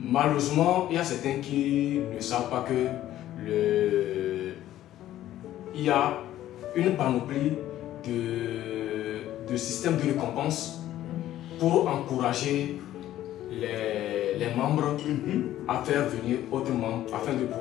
il y a certains qui ne savent pas que il y a une panoplie de systèmes de récompense pour encourager les membres à faire venir autres membres afin de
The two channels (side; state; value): right; quieter; 13.2 dB